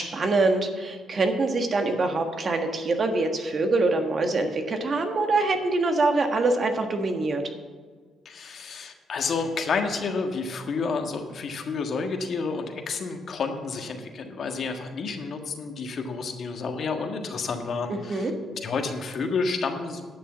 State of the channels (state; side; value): normal; both; correlation 0.76